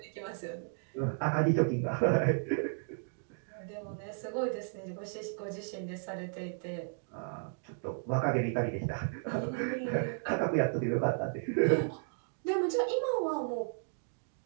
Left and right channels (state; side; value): silent; left; digital silence